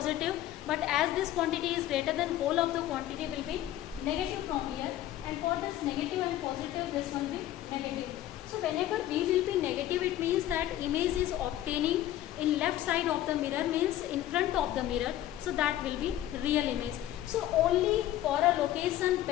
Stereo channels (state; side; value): quieter; right; 13.4 dB